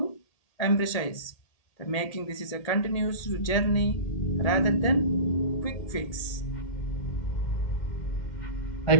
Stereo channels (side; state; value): right; late; 1.8 ms